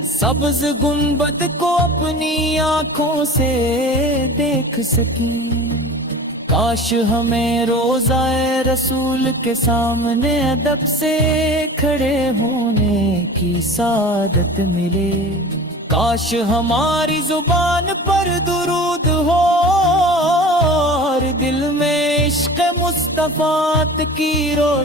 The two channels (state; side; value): normal; both; correlation 0.38